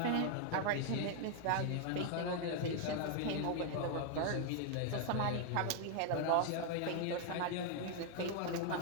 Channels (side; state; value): both; different; correlation 0.00